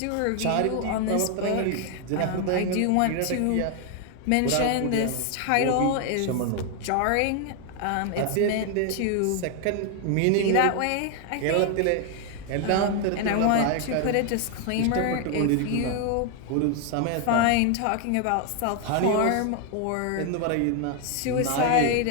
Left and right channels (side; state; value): both; different; correlation 0.01